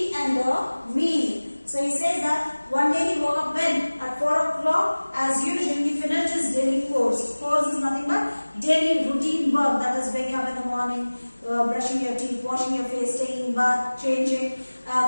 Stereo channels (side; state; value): both; inverted; correlation -1.00